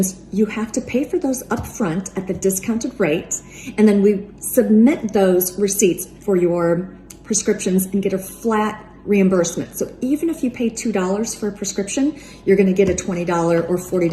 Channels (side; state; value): both; identical; correlation 1.00